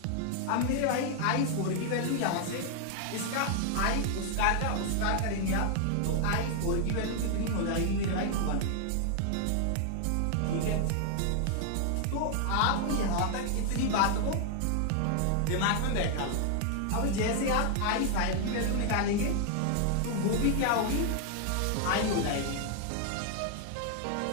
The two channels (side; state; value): both; different; correlation 0.00